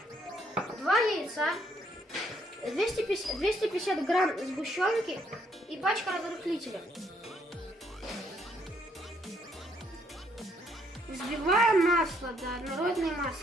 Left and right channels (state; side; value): normal; both; correlation 0.70